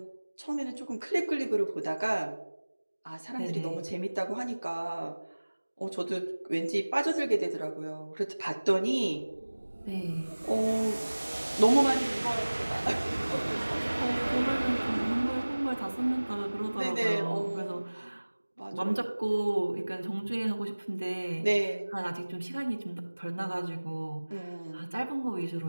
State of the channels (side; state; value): both; inverted; correlation -1.00